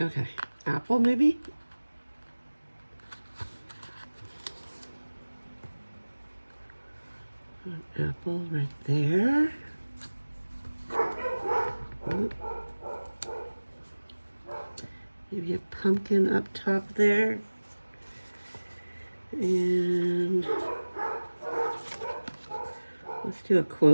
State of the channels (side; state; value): both; inverted; correlation -1.00